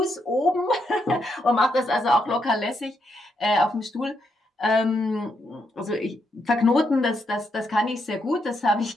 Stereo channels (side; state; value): both; normal; correlation 0.79